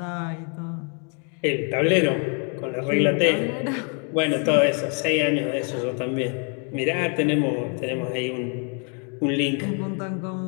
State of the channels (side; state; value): right; quieter; 39.5 dB